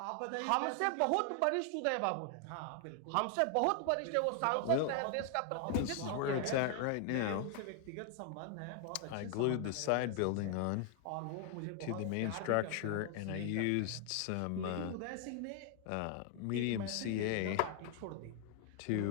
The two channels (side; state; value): both; different; correlation 0.00